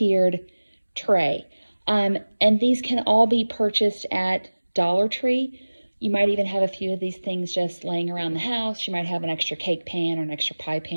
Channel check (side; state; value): both; inverted; correlation -1.00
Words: tray. And these can all be purchased at Dollar Tree. You might even have a few of these things just laying around the house. You might have an extra cake pan or an extra pie